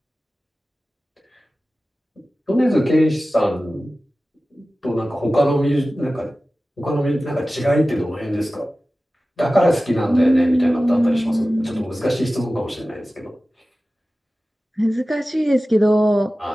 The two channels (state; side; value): normal; both; correlation 0.96